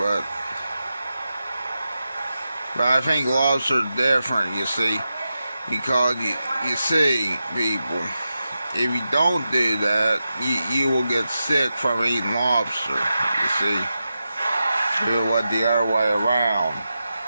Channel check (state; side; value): inverted; both; correlation -0.90